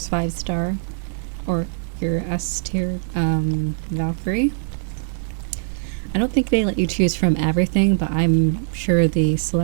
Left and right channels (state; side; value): silent; left; 64 dB below the other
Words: 5-star, or your S tier Valkyrie. I don't think they let you choose from everything, but I'm sure the